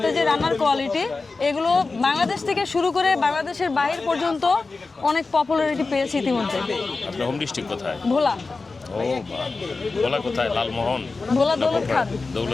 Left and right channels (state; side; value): quieter; right; 3.9 dB